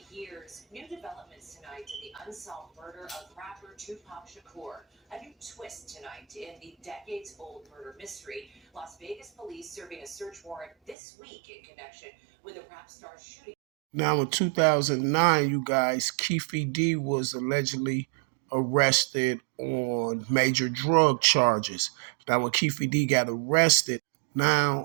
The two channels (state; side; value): drops out; left; at 11.0 s